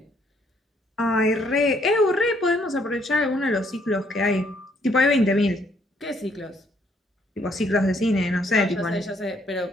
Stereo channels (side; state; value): both; normal; correlation 0.68